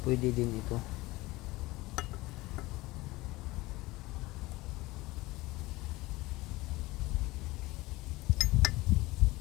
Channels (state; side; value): quieter; right; 20.4 dB